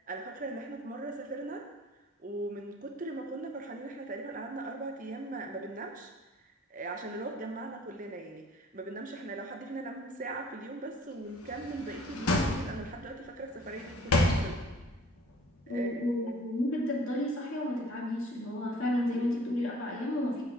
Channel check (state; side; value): normal; both; correlation 0.53